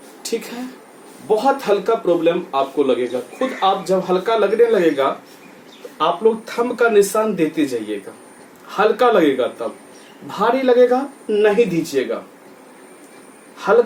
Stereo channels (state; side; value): identical; both; correlation 1.00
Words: ठीक है। बहुत हल्का प्रॉब्लम आपको लगेगा, खुद आप जब हल्का लगने लगेगा तो आप लोग थंब का निशान देते जाइएगा। हल्का लगेगा तब, भारी लगेगा नहीं दीजिएगा,